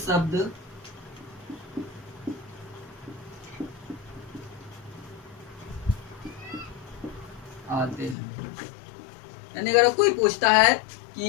आते हैं। यानी अगर कोई पूछता है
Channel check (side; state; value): right; drops out; at 8.2 s